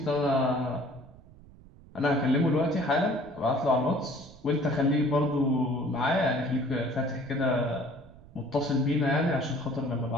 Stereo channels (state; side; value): noise; right; rumble, 22 dB below the sound